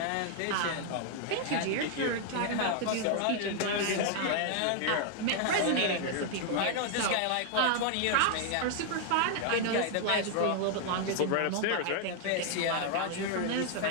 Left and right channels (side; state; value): both; different; correlation 0.00